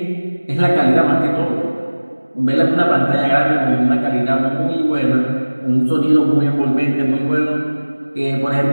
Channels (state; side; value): inverted; both; correlation -1.00